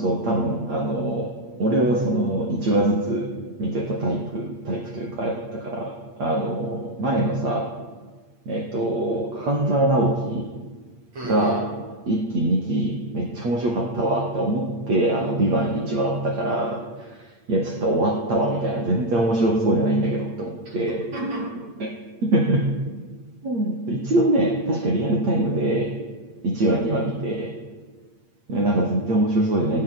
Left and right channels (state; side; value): late; left; 8.6 ms